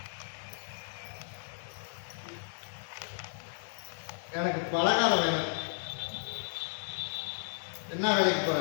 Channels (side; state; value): right; silent; digital silence